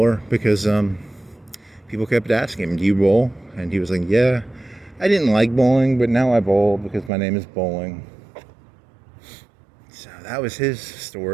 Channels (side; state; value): left; drops out; at 7.1 s